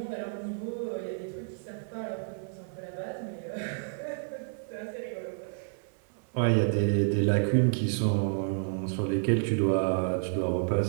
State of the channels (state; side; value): silent; left; 55 dB below the other